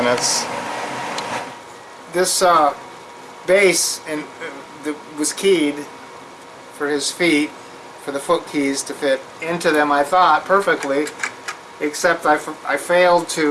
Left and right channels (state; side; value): identical; both; correlation 1.00